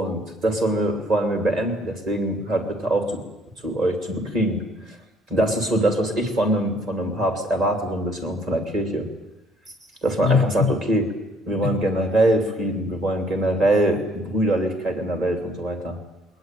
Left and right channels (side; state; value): both; normal; correlation 0.62